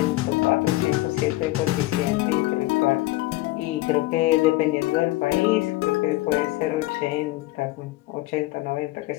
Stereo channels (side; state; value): right; quieter; 18.8 dB